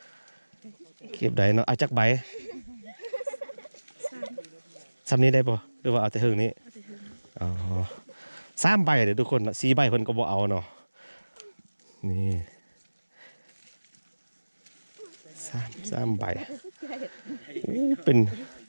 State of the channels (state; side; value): inverted; both; correlation -1.00